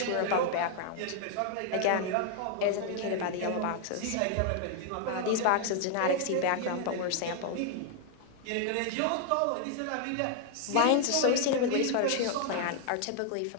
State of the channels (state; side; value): different; both; correlation 0.00